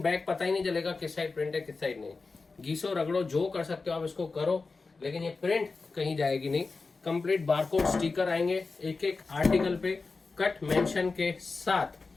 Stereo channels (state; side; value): quieter; right; 4.1 dB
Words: बैक पता ही नहीं चलेगा किस साइड प्रिंट है किस साइड नहीं। घीसो रगड़ो जो कर सकते हो आप इसको करो, लेकिन ये प्रिंट कहीं जाएगी नहीं। कंप्लीट बारकोड स्टिकर आएंगे एक एक आर्टिकल पे कट मेंशन के